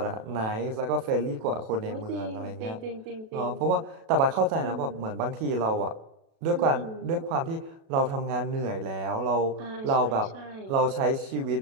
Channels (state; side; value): late; left; 37 ms